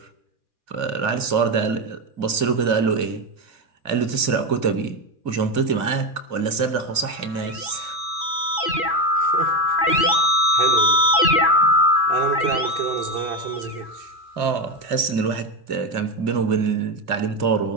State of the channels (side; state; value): left; late; 2.5 ms